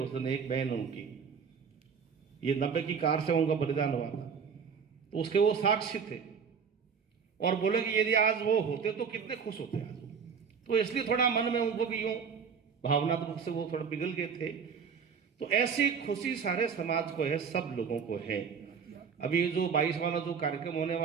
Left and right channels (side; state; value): left; quieter; 6.4 dB